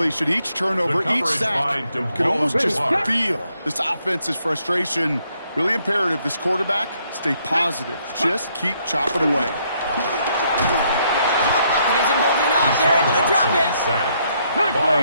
each turnover, each sack, you can almost just feel this offense's frustration. Really imperative this quarterback stay positive. Just keep chopping away. Pocket isn't holding up. They're able to drop it.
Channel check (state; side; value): inverted; both; correlation -0.72